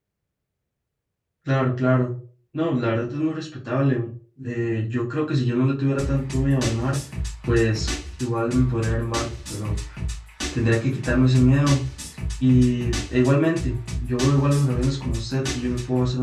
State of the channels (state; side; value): identical; both; correlation 1.00